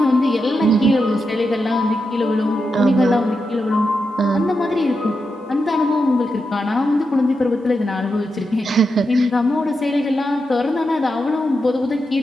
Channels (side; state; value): both; normal; correlation 0.87